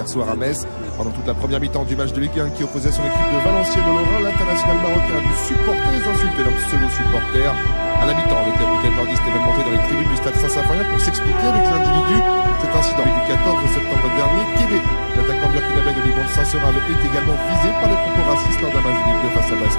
soir à Metz. Pendant toute la première mi-temps du match de Ligue 1 qui opposait son équipe de Valenciennes au Lorrain, l'international marocain a dû supporter les insultes d'un pseudo-supporter. À la mi-temps, le capitaine nordiste est même monté dans les tribunes du stade Saint-Symphorien pour s'expliquer avec l'individu. Cet incident du 14 septembre dernier, Kébé, l'attaquant burkinabé de Ligue 1 de Saint-Seurin, est également visé par les propos racistes lors d'un match de Ligue 2 face à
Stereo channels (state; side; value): inverted; both; correlation -1.00